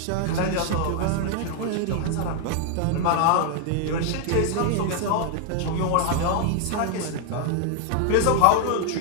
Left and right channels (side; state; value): both; different; correlation 0.00